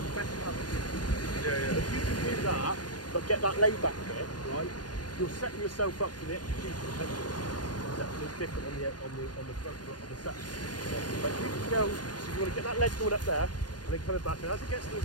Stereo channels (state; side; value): late; right; 0.69 ms